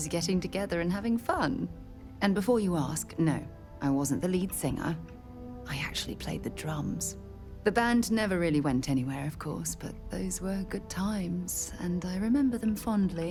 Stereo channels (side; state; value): both; identical; correlation 1.00